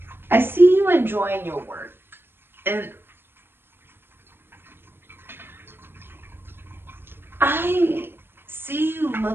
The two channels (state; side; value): late; left; 0.10 ms